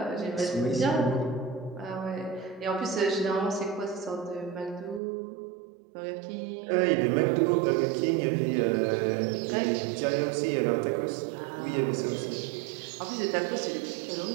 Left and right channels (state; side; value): drops out; left; at 5.0 s